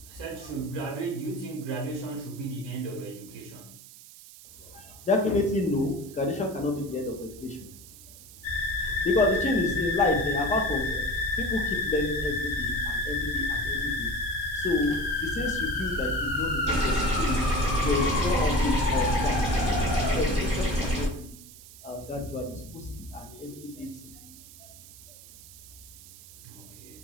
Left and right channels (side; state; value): right; noise; hiss, 18 dB below the sound